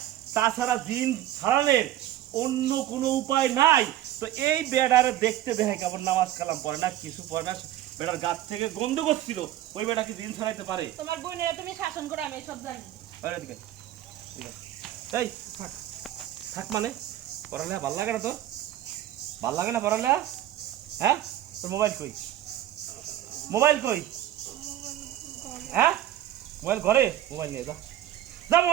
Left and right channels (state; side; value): quieter; left; 13.2 dB